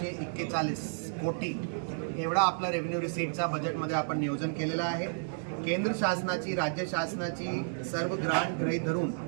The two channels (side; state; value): left; silent; digital silence